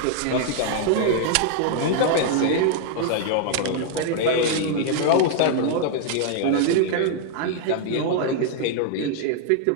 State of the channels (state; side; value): different; both; correlation -0.01